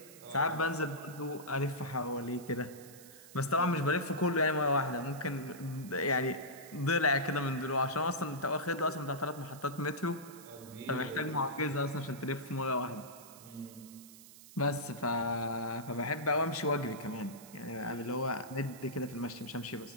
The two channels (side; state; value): right; noise; hiss, 18 dB below the sound